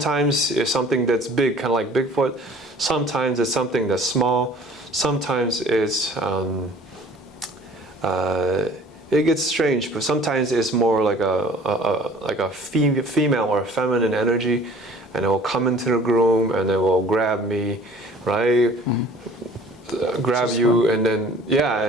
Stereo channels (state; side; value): normal; both; correlation 0.49